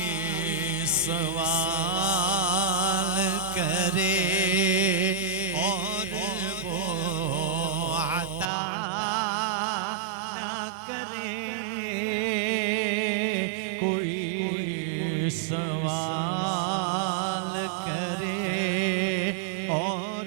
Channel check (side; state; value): left; drops out; at 8.5 s